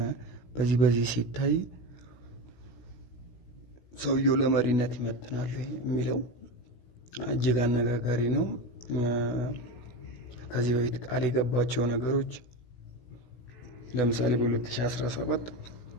በዚህ ሲታይ ሰውየው ለመሪነት ይመጥናል የሚለው እጅግ አነጋጋሪ ነው። ከዚህ በፊት ቃል የገባቸው ነገሮች ለምሳሌ በ2017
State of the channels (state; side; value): late; right; 16 ms